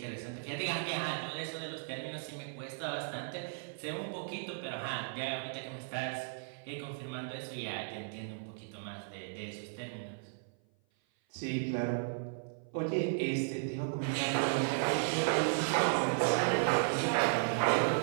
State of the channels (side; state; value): left; silent; 54 dB below the other